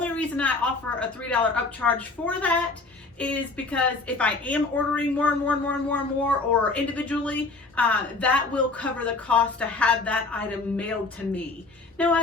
reason I offer a $3 upcharge for that is because if I am ordering more or individually, that will cover the cost to have that item mailed to me. Now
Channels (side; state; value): right; quieter; 3.6 dB